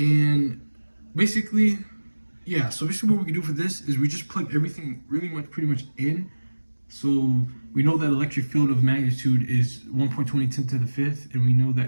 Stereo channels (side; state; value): both; inverted; correlation -1.00